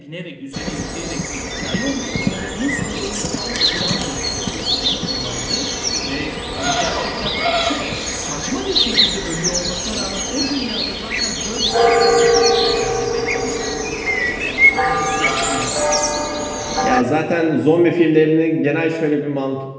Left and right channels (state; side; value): identical; both; correlation 1.00